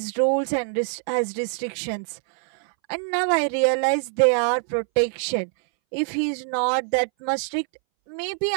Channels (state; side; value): silent; left; 62 dB below the other